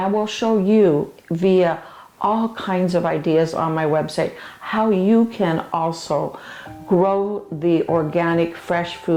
will show you via all kinds of ideas on my website how you can also grow the organic fresh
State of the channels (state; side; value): identical; both; correlation 1.00